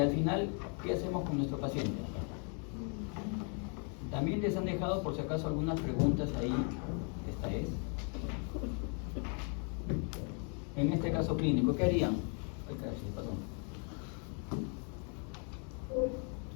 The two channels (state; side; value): quieter; right; 39.4 dB